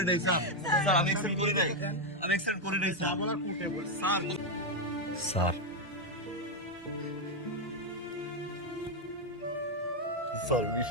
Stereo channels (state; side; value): normal; both; correlation 0.03